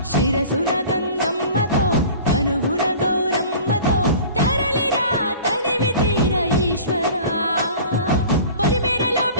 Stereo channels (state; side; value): inverted; both; correlation -0.42